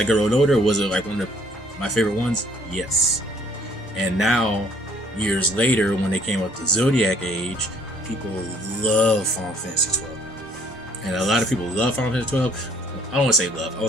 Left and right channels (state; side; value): normal; both; correlation 0.61